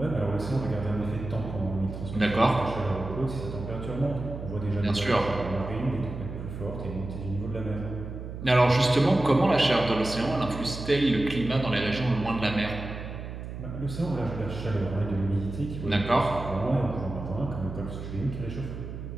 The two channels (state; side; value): noise; right; hum, 9 dB below the sound